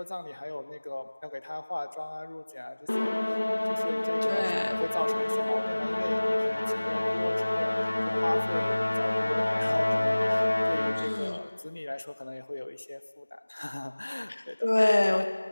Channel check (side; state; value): both; inverted; correlation -1.00